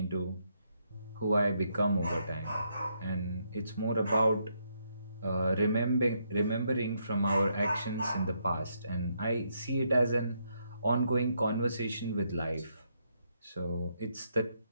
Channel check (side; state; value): both; inverted; correlation -0.76